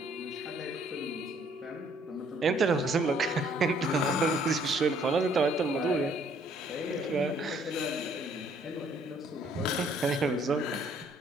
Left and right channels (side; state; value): both; normal; correlation 0.63